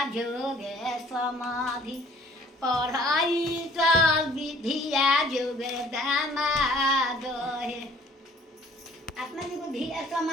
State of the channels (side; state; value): both; normal; correlation 0.55